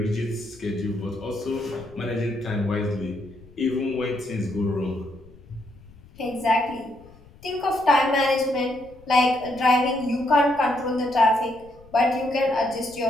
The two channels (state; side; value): noise; left; rumble, 24 dB below the sound